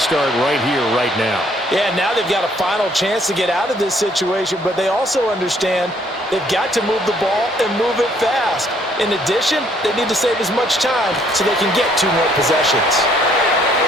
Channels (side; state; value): both; normal; correlation 0.65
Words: right here, right now. Yeah, now they've got a final chance to get out of this situation, but they also understand they've got to move the ball and move it fast. In addition, they need to save as much time so they can get 2 more possessions.